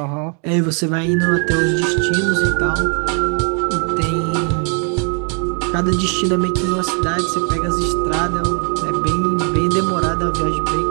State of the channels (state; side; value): quieter; left; 39.7 dB